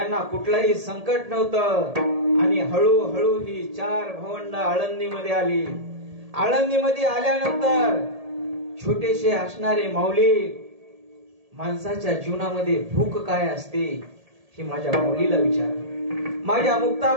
कुठलंही संकट नव्हतं. आणि हळूहळू ही 4 भावंड आळंदीमध्ये आली. आळंदीमध्ये आल्यानंतर छोटेसे असणारे माऊली, माणसाच्या जीवनामध्ये भूक काय असते हे माझ्या माऊलीला विचारा, माझ्या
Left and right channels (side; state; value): left; late; 1.8 ms